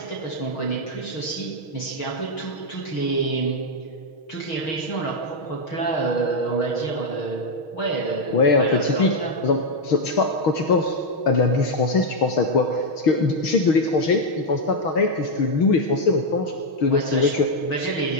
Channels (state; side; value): late; right; 6.4 ms